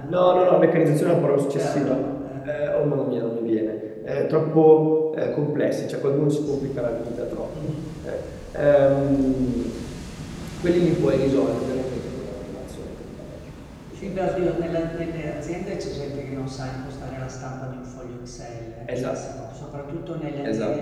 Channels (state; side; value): identical; both; correlation 1.00